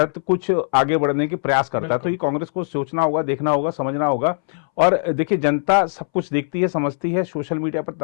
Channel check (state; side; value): silent; right; 64 dB below the other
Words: कुछ आगे बढ़ने के प्रयास करता है? तो ये कांग्रेस को सोचना होगा, देखना होगा, समझना होगा। और देखिए, जनता सब कुछ देखती है, समझती है। सोशल मीडिया पर